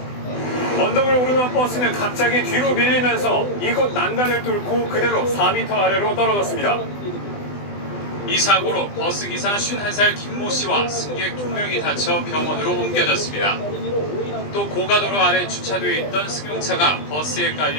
언덕을 오르던 버스는 갑자기 뒤로 밀리면서 이곳 난간을 뚫고 그대로 4m 아래로 떨어졌습니다. 이 사고로 버스기사 51살 김모 씨와 승객 2명이 다쳐 병원으로 옮겨졌습니다. 또 고가도로 아래 주차되어 있던 승용차가 버스에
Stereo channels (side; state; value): right; late; 20 ms